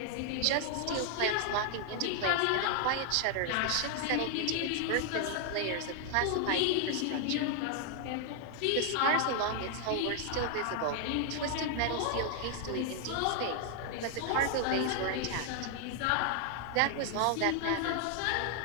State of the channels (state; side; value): different; both; correlation 0.00